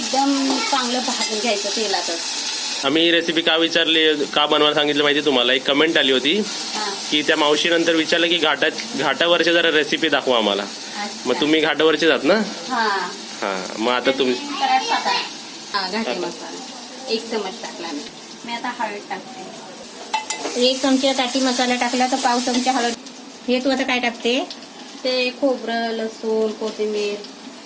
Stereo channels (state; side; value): identical; both; correlation 1.00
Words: चांगलं भाजून घ्यायचं तेलातच. आम्ही ही रेसिपी का विचारली, का बनवायला सांगितलं माहिती तुम्हाला? एक कमेंट आली होती की त्या मावशीनंतर विचारलं की घाटावरची जरा रेसिपी दाखवा आम्हाला. मग तुम्ही घाटावरचे जात ना? हा. मग आता तुम्ही घाटी मसाला 1 चमच टाकला मी. आता हळद टाकते. 1 चमचा काठी मसाला टाकला तर पाव चमचा हळद. हे तू आता काय टाकते? ते खोबरं, लसूण, कोथिंबीर